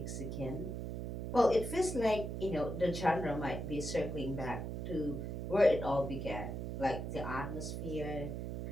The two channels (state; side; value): noise; right; hum, 4 dB below the sound